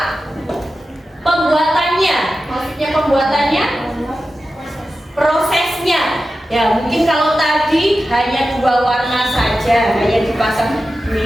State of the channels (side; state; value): both; normal; correlation 0.93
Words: Pembuatannya. Maksudnya pembuatannya? Prosesnya. Ya, mungkin kalau tadi hanya dua warna saja, hanya dipasang